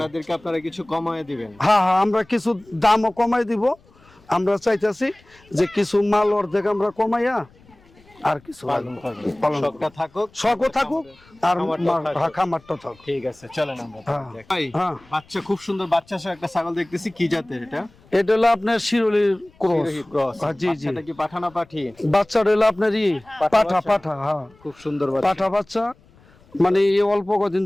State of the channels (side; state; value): left; noise; rumble, 29 dB below the sound